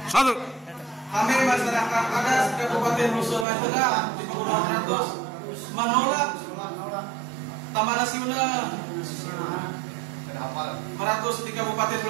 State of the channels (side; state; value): left; drops out; at 3.5 s